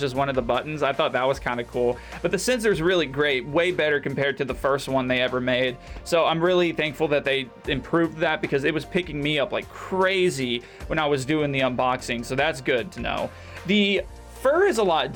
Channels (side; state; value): both; identical; correlation 1.00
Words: as one of the buttons, I thought that was kind of cool. But the sensor is really great, way better compared to the first one they ever made. So I'm really thankful that they improved that because it was picking me up like crazy when I was doing the unboxing. So that's good to know. The fur is a lot